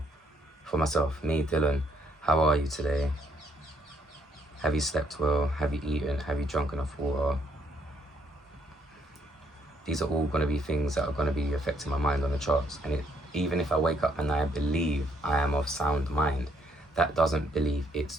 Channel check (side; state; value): both; normal; correlation 0.70